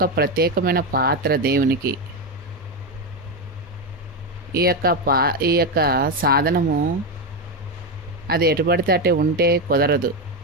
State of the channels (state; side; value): normal; both; correlation 0.10